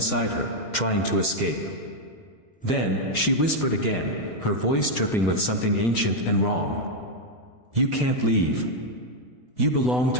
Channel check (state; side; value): late; right; 7.9 ms